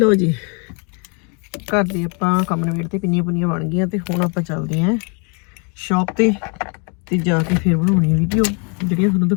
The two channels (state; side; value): quieter; right; 35.9 dB